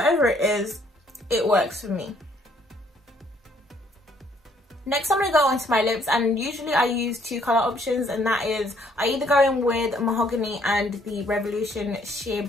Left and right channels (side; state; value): both; normal; correlation 0.65